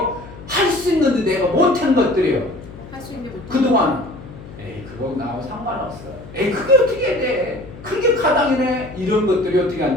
할 수 있는데 내가 못한 것들이에요. 할 수 있는 게 못. 그동안 에이 그거 나하고 상관없어. 에이 그게 어떻게 돼? 그게 가당이네. 이런 것들이 어떻게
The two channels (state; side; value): noise; left; hum, 16 dB below the sound